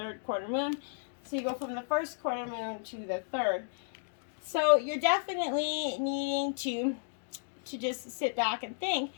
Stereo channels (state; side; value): silent; right; digital silence